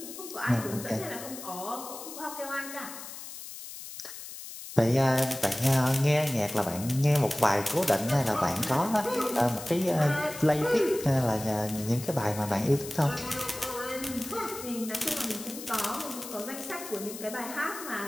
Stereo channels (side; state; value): left; noise; hiss, 11 dB below the sound